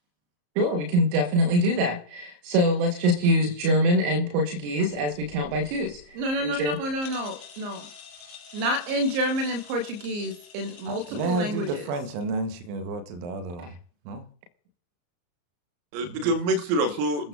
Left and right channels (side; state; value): left; late; 34 ms